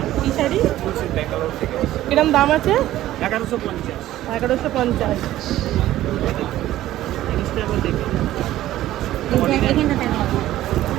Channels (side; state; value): left; quieter; 14.2 dB